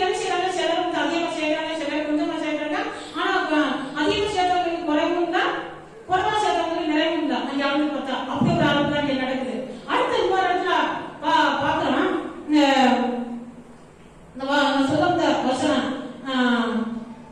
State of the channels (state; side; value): identical; both; correlation 1.00